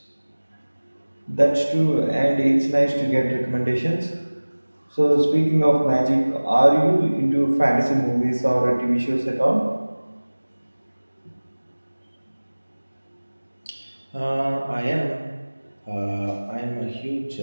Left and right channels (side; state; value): both; inverted; correlation -1.00